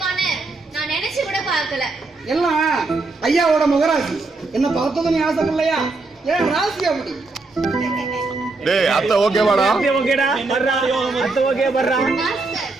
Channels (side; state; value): left; quieter; 3.5 dB